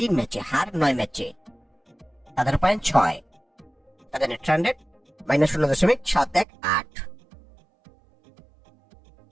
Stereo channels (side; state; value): left; drops out; at 6.5 s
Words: ম্যাচে, হার 9 ম্যাচে। তাদের পয়েন্ট 6, তাদের net run rate -0.718।